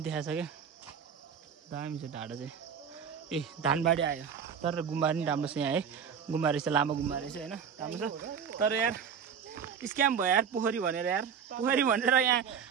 देखाएको छ क्या दामी छ डाँडा चाहिँ ए धानबारी आयो तर गुम्बा पनि राम्रो छ यहाँ है गुम्बा रहेछ लामो गुम्बा रहेछ होइन राम्रो छ तर यार स्क्याम भयो यार पोखरी भनेर यहाँ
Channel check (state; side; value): quieter; left; 7.1 dB